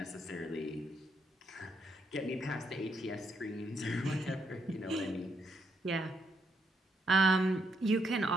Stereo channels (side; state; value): both; normal; correlation 0.76